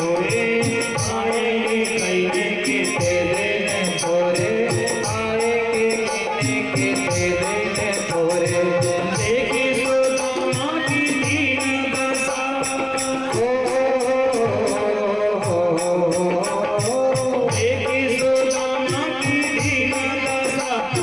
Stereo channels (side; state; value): left; noise; rumble, 29 dB below the sound